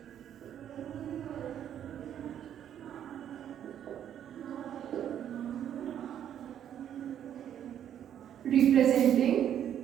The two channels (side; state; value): left; quieter; 10.0 dB